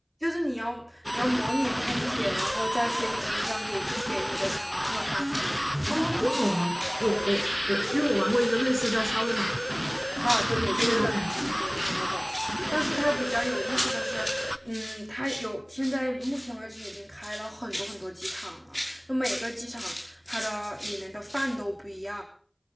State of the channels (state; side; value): identical; both; correlation 1.00